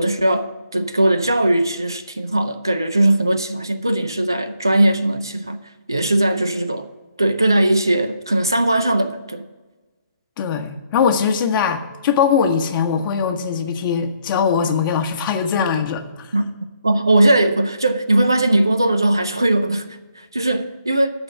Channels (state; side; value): inverted; both; correlation -0.76